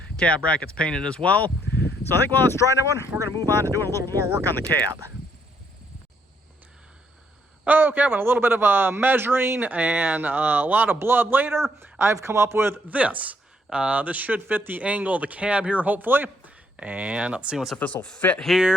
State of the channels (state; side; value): normal; both; correlation 0.71